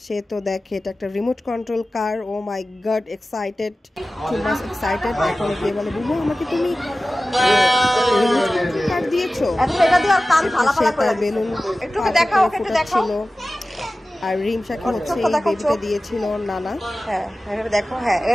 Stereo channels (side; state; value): both; normal; correlation 0.96